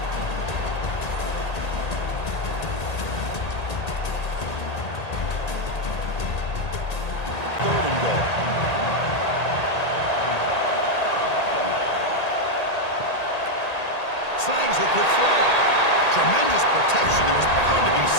slangs it with flow. Tremendous protection. There was bound to be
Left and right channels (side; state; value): right; late; 1.8 ms